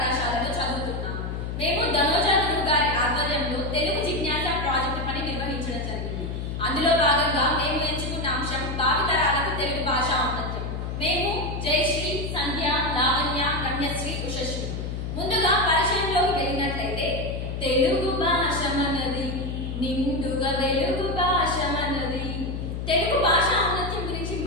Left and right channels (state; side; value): noise; left; hum, 4 dB below the sound